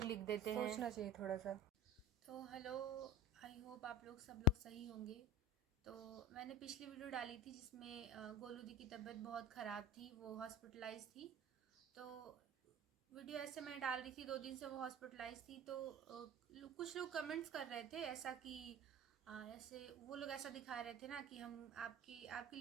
लिख देते हैं। सोचना चाहिए थोड़ा सा। तो हेलो, आई होप आप लोग सब लोग सही होंगे। तो मैंने पिछली वीडियो डाली थी जिसमें गोलू दी की तबीयत बहुत ख़राब थी, वो हॉस्पिटलाइज थी। तो वीडियो ऐसे मैं डाल रही थी, 2 दिन से वो हॉस्पिटलाइज थी। तो कुछ लोग कमेंट्स कर रहे थे ऐसा कि ऐसे वो लोग ऐसा दिखा रहे थे ना कि हम आपकी आपके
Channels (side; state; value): both; normal; correlation 0.32